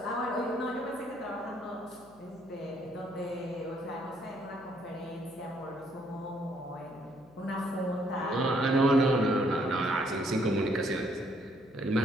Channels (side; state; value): left; noise; hum, 25 dB below the sound